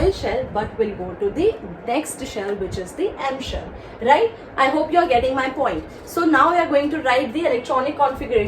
shell but will go to the next shell, which is the M shell, right? I hope you are getting my point. So now we are going to write the electronic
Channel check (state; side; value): identical; both; correlation 1.00